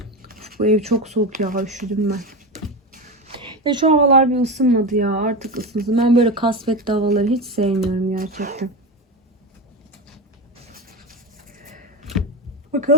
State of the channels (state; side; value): normal; both; correlation 0.19